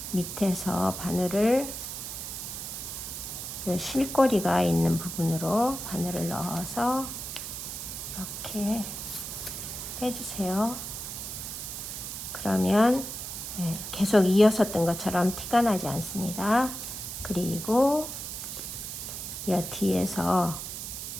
밑에서 바늘을 이 실꼬리가 있는 부분으로 바늘을 넣어서 이렇게 빼주세요. 그러면 계속 이어서 뜬 것처럼 티가 나지 않습니다. 그리고 이 뒤에서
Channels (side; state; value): right; noise; hiss, 7 dB below the sound